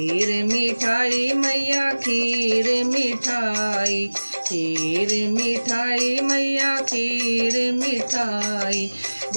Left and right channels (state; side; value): inverted; both; correlation -1.00